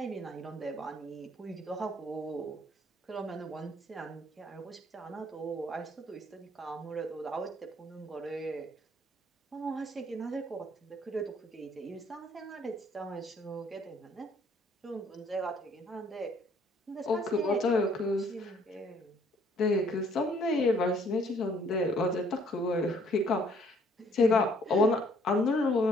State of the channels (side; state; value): both; normal; correlation 0.62